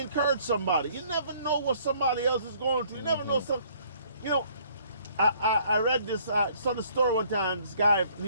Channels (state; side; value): inverted; both; correlation -0.61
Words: somebody. You never know what somebody else is going through. You never know some. You know, I read this. I saw the story one time. This guy from